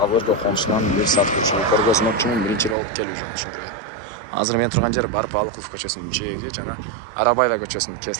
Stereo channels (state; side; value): drops out; left; at 2.8 s